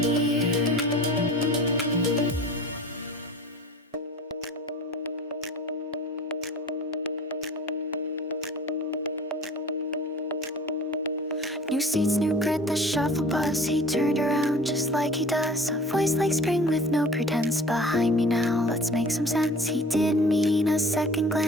near. New seats, new grit, the shuffle buzz. He turned around just like he does. A voice like spring with no pretense. Behind me now, let's make some sense. He didn't mean a second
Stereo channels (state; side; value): normal; both; correlation 0.43